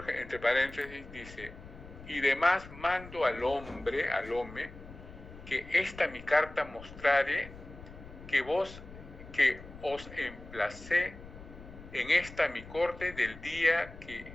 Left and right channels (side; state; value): left; noise; rumble, 16 dB below the sound